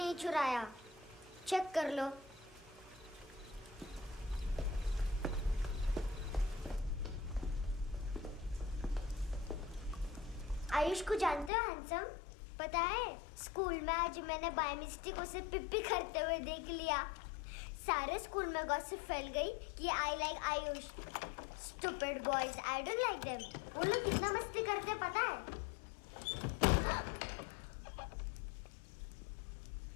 चुराया। चेक कर लो। आयुष को जानते हो हैंडसम? पता है, स्कूल में आज मैंने बाय मिस्टेक उसे पिप्पी करते हुए देख लिया। सारे स्कूल में गॉसिप फैल गई कि I like Ayush. Stupid boys, I don't like them. वो लोग कितना मस्ती करते हैं पता है?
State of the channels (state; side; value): drops out; right; at 11.5 s